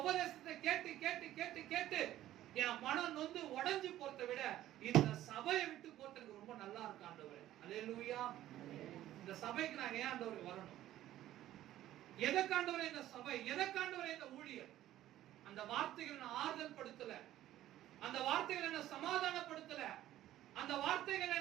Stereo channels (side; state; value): left; quieter; 13.6 dB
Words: உபதேசத்தை கேட்டு கேட்டு கேட்டு கேட்டு என் மனம் நொந்து உடைஞ்சு போறதை விட இந்த சபையை விட்டு போறதுக்கு ரொம்ப நல்லா இருக்கு ஆண்டவரே. அல்லேலூயா. இந்த சபைக்கு நான் ஏன் ஆண்டவரே வரணும்? எதற்காண்டவரே இந்த சபை, எதற்காண்டவரே இந்த ஊழியர்? அந்த வார்த்தைகளை நான் ஆறுதல் படுத்தல, அந்த வார்த்தைகளை என்ன சமாதானப்படுத்தல, அந்த வார்த்தைகளை